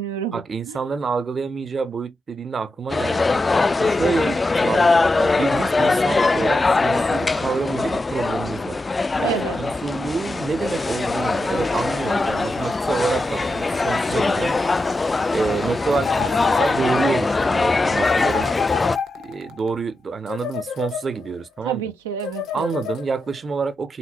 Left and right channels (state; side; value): normal; both; correlation 0.88